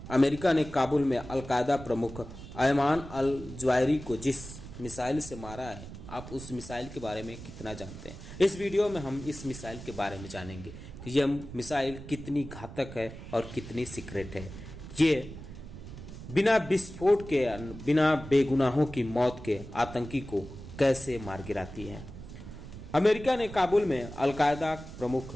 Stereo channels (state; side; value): noise; right; rumble, 13 dB below the sound